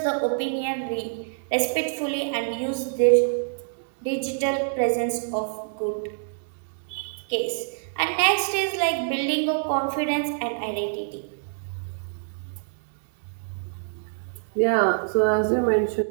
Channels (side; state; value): left; silent; digital silence